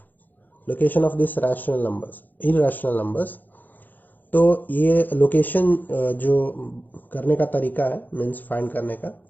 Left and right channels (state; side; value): late; right; 0.085 ms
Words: Location of this rational numbers, irrational numbers. तो ये लोकेशन जो करने का तरीका है, मीन्स फाइंड करने का,